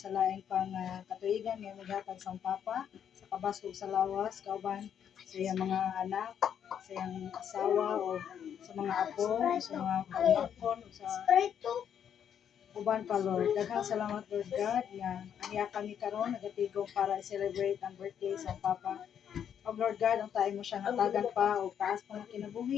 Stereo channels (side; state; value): right; quieter; 8.8 dB